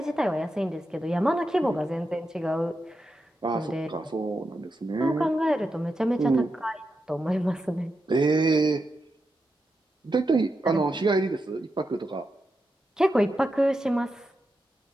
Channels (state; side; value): normal; both; correlation 0.87